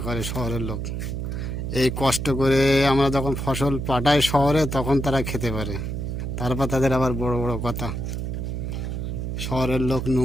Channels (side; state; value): right; noise; hum, 3 dB below the sound